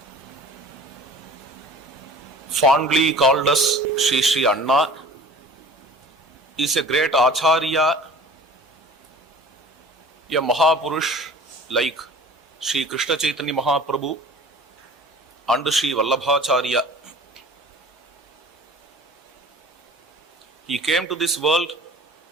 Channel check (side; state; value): both; normal; correlation 0.44